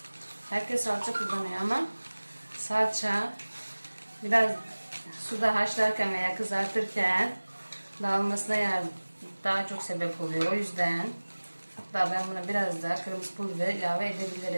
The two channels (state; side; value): inverted; both; correlation -1.00